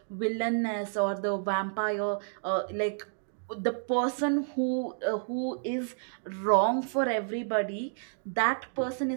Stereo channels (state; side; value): silent; left; digital silence